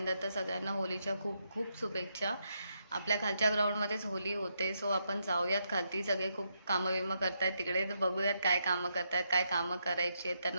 तर सगळ्यांना होलीच्या खूप खूप शुभेच्छा. आपल्या खालच्या ग्राउंडमध्येच होली होते, सो आपण जाऊयात खालती. सगळे खूप कामं विमं करतायत तिकडे, तर बघूयात काय कामं करतायत, काय कामं करायची आहेत,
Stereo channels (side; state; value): both; inverted; correlation -0.80